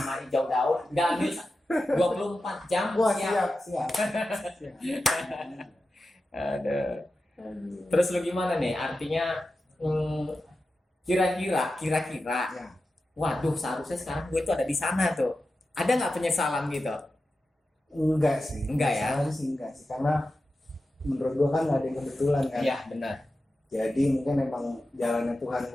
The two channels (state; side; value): normal; both; correlation 0.92